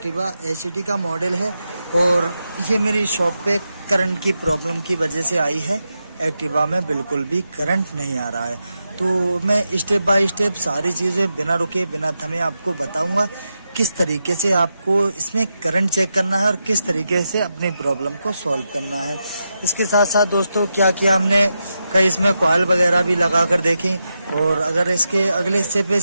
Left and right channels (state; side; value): inverted; both; correlation -0.87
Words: एचडी का मॉडल है और ये मेरी शॉप पे करंट की प्रॉब्लम की वजह से आई है। एक्टिवा में बिल्कुल भी करंट नहीं आ रहा है, तो मैं स्टेप बाय स्टेप सारी चीज़ें बिना रुके बिना थमे आपको बताऊंगा किस तरीके से आपको इसमें करंट चेक करना है और किस तरीके से अपनी प्रॉब्लम को सॉल्व करना है। इसके साथ साथ दोस्तों क्या किया हमने, कई इसमें कॉइल वगैरह भी लगा कर देखी, और अगर इसके अगले हिस्से पे